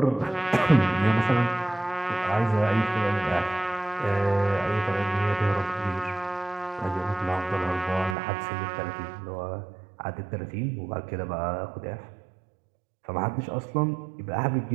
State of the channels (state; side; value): drops out; left; at 8.2 s